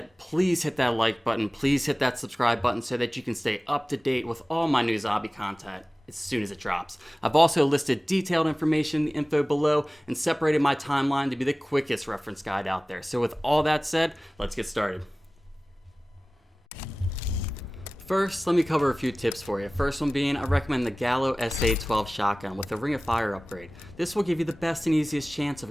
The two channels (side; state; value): both; normal; correlation 0.98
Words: please hit that like button, please hit that subscribe button so that you can stay up to date with all my new zombie content as soon as it drops. I've also listed detailed information in the info below and separated my timeline to be the quickest reference guide out there. So with all that said, let's get started. First, let me cover a few tips for you. First one being, I recommend the Gallo SA-12 shotgun with the Ring of Fire upgrade. This will give you the best and easiest chance